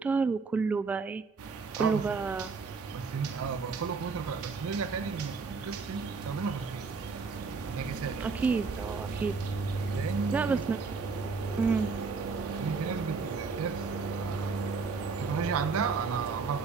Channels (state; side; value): quieter; left; 4.6 dB